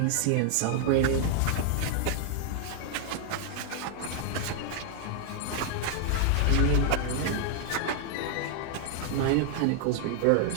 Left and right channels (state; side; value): different; both; correlation 0.00